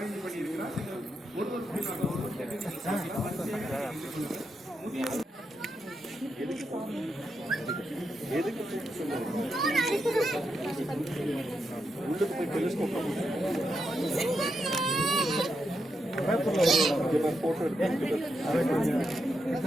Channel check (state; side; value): normal; both; correlation 0.84